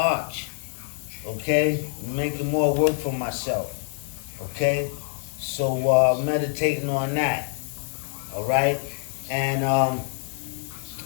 Okay? Making more work for myself. Okay? So meditating on that. All right? And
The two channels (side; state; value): right; silent; digital silence